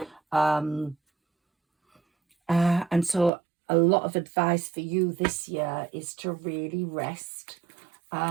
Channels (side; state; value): left; drops out; at 3.3 s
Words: And so a lot of advice for you this year is to really rest,